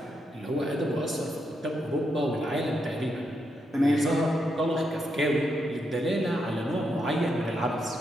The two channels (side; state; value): both; normal; correlation 0.81